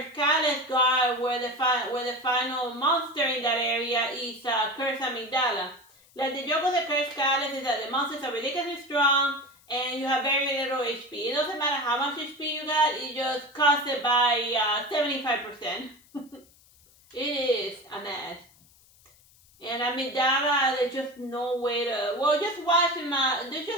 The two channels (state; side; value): noise; left; hiss, 29 dB below the sound